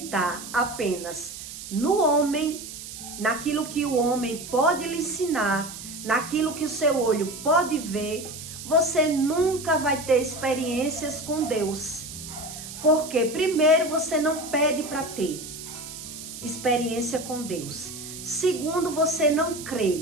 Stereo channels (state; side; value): noise; right; hiss, 11 dB below the sound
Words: apenas no homem, naquilo que o homem pode lhe ensinar, naquilo que o seu olho pode ver, você nunca vai ter experiências com Deus. Porque primeiro você não pede para ter experiência com Deus. Segundo, você não